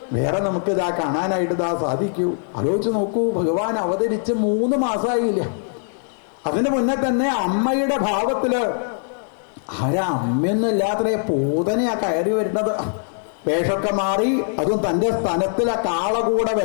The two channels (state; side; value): silent; right; digital silence